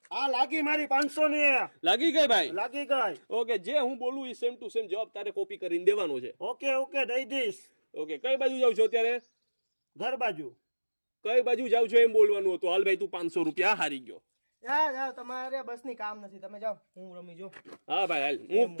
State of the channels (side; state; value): both; inverted; correlation -1.00